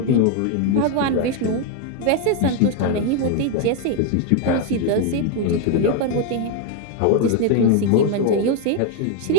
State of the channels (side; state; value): both; different; correlation 0.01